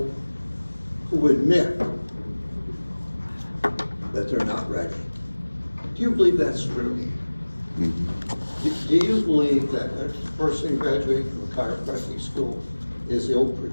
who admit that they're not ready. Do you believe that's true? Mm-hmm. Do you believe that a person graduating from a chiropractic school is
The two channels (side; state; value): both; inverted; correlation -1.00